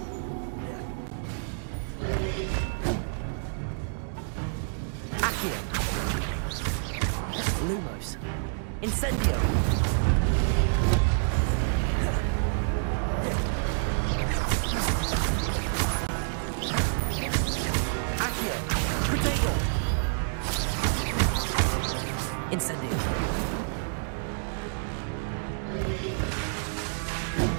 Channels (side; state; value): left; silent; digital silence